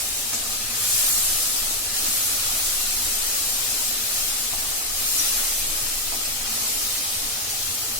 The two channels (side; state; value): both; normal; correlation 0.02